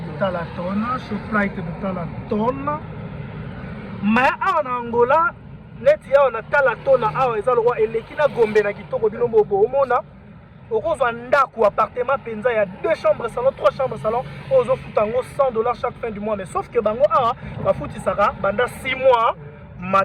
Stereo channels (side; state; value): both; identical; correlation 1.00